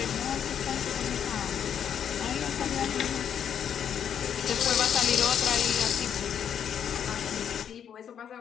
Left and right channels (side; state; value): right; quieter; 8.6 dB